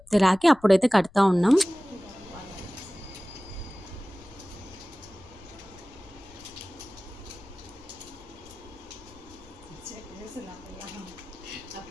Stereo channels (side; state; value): left; noise; rumble, 23 dB below the sound